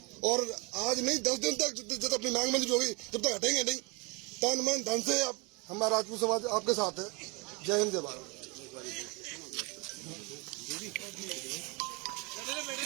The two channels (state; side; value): quieter; left; 28.5 dB